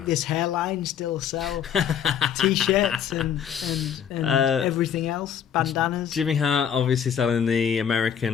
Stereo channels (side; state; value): right; quieter; 8.5 dB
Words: this hairline still sell t-shirts and everything else, bandanas. Jimmy Hart obviously selling the